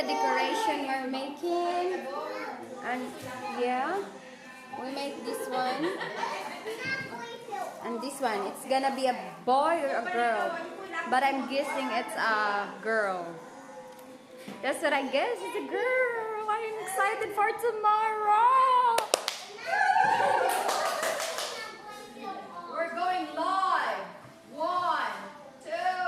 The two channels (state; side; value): identical; both; correlation 1.00